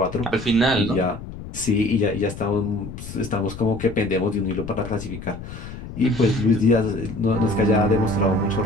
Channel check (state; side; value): noise; left; rumble, 11 dB below the sound